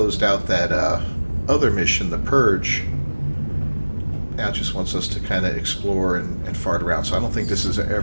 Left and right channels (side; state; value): both; inverted; correlation -1.00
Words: out that other mission, the Purge, now it just wants us to kind of explore and fart around. So I don't think this is